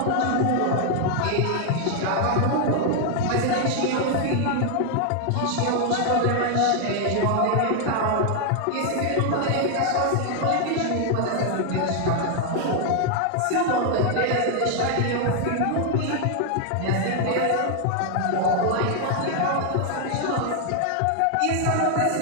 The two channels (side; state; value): both; different; correlation 0.00